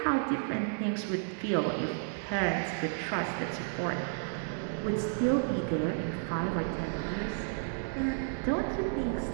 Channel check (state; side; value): silent; left; digital silence